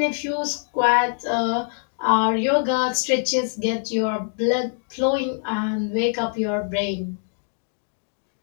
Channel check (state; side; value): silent; right; 63 dB below the other